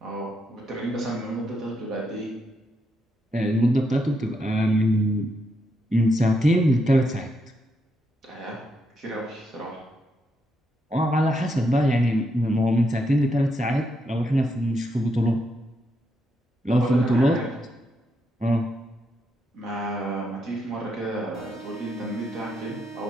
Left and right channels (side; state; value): both; normal; correlation 0.80